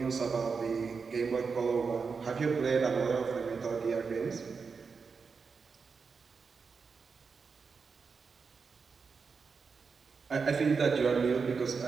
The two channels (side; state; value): left; quieter; 5.2 dB